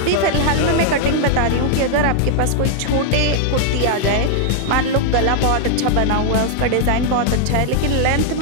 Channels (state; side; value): different; both; correlation 0.00